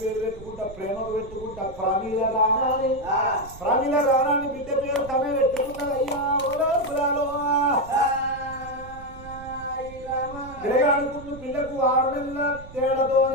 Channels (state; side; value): noise; right; rumble, 17 dB below the sound